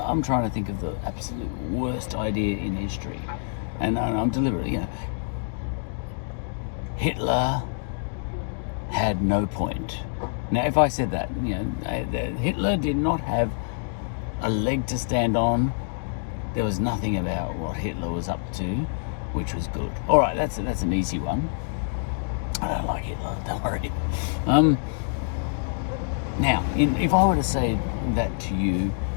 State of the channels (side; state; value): right; silent; digital silence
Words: trying to think of the absolute worst idea in history, and I'm deliberately, Hitler had no point. Now, if I said that, Hitler did not have a leg to stand on. There was nothing about what Hitler was up to which was good. All right, that's an easy one. I don't like Hitler, don't worry. Now, if I were to say that to you,